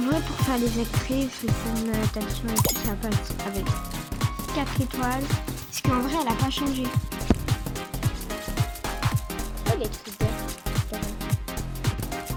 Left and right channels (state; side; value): identical; both; correlation 1.00